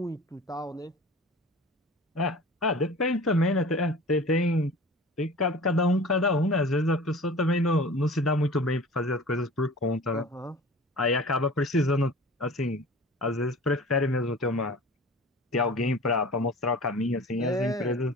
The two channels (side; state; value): both; normal; correlation 0.41